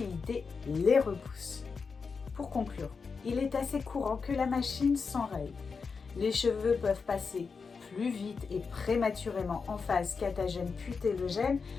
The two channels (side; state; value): right; quieter; 5.1 dB